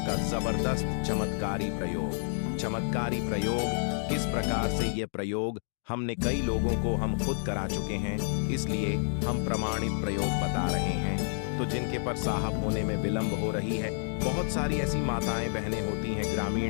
जबरदस्त चमत्कारी प्रयोग। चमत्कारी प्रयोग किस प्रकार से, यह प्रयोग हमने कई लोगों को हम खुद करा चुके हैं, इसलिए हम प्रमाणित प्रयोग बता रहे हैं। तो जिनके पर साहब होने में विलंब हो रही है, बहुत सारी ऐसी माताएं बहनें होती हैं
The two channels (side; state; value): right; silent; digital silence